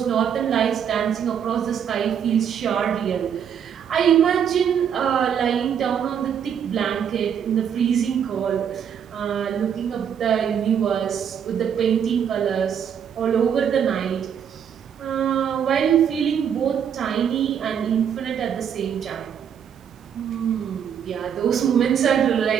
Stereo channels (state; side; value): quieter; left; 8.2 dB